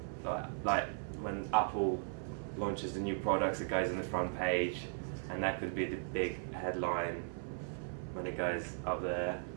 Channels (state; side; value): silent; left; 53 dB below the other